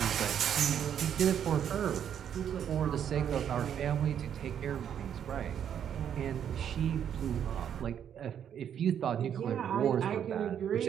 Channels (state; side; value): quieter; left; 9.0 dB